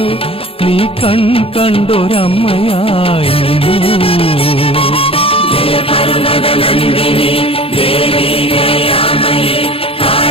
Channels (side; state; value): right; late; 0.27 ms